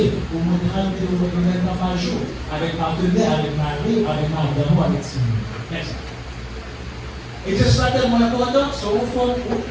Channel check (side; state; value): both; identical; correlation 1.00